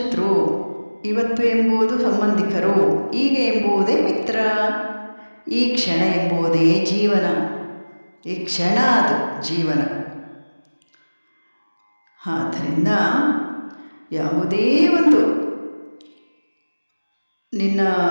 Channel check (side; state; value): both; inverted; correlation -1.00